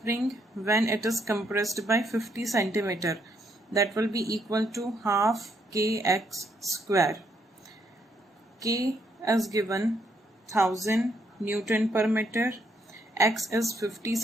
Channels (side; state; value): both; normal; correlation 0.74